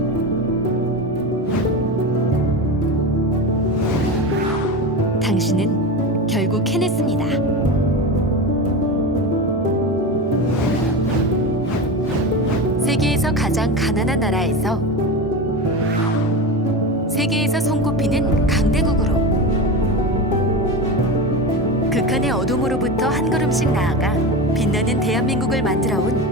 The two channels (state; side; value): normal; both; correlation 0.23